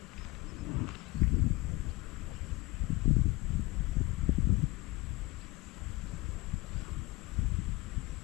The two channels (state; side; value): quieter; right; 21.6 dB